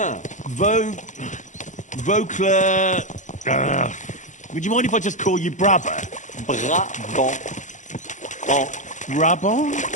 Vauquelin... would you mind if I just call you Brabber? Brabant. Brabant?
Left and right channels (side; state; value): right; late; 0.36 ms